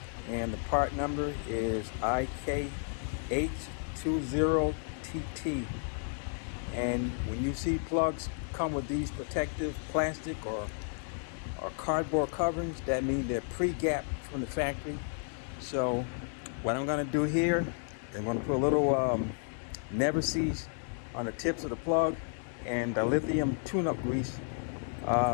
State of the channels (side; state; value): right; silent; 56 dB below the other